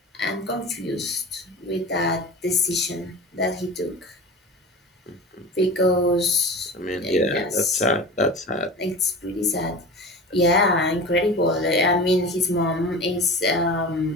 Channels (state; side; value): normal; both; correlation 0.33